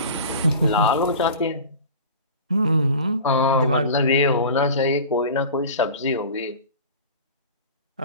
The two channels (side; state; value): both; inverted; correlation -0.36